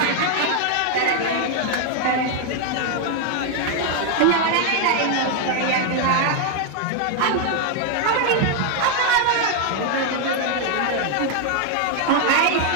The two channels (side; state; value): both; different; correlation 0.00